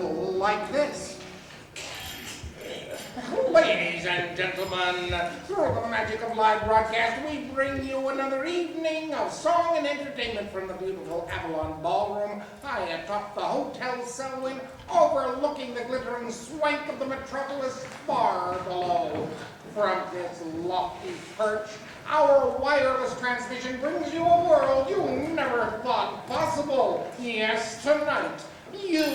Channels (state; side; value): identical; both; correlation 1.00